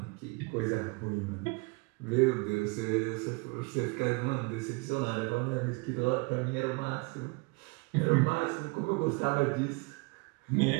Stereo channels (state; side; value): quieter; left; 28.7 dB